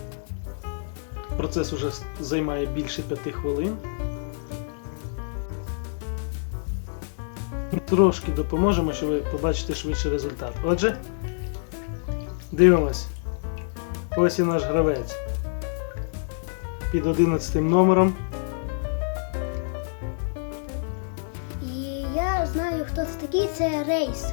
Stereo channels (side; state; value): right; silent; digital silence